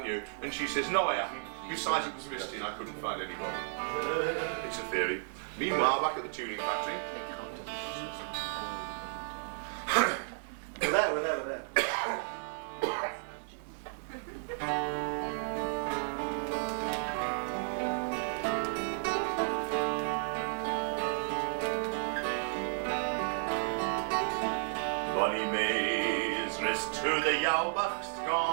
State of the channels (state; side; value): silent; left; digital silence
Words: you?" And she says, "No, I haven't. Besides, it was misty and I couldn't find anyone." It's a theory. Meanwhile, back at the tuning factory. We're there. Bonnie May's wrist to the Yalbucht's